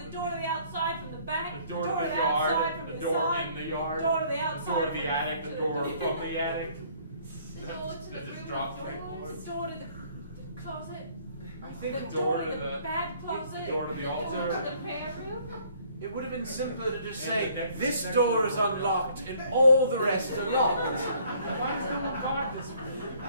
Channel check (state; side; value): inverted; both; correlation -0.60